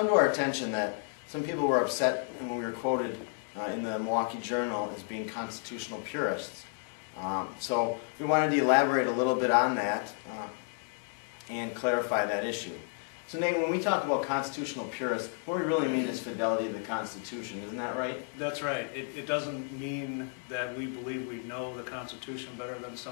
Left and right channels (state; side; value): silent; right; 56 dB below the other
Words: to our attention that some people were upset when we were quoted in the Milwaukee Journal as being constitutional purists. So we wanted to elaborate a little bit on that and clarify that issue. So Nate, when we talk about constitutional purists, what we really mean is fidelity to the Constitution, isn't that right? That's right. It doesn't mean that we believe we know the Constitution better than